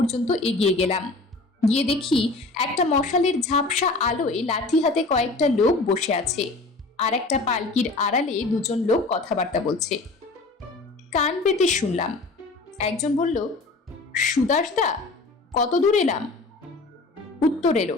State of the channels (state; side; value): quieter; right; 3.3 dB